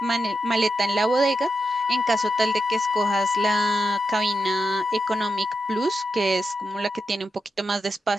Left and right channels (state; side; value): normal; both; correlation 0.87